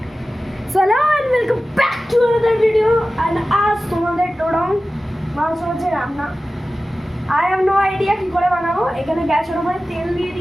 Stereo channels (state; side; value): normal; both; correlation 0.95